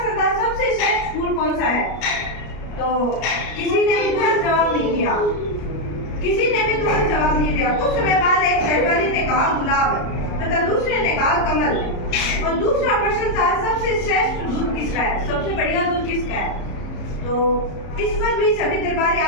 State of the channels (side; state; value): right; late; 34 ms